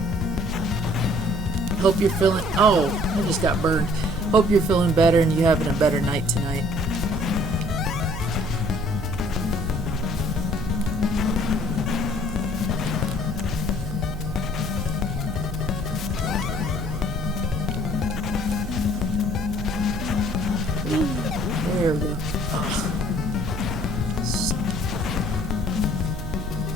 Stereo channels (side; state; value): right; noise; hum, 7 dB below the sound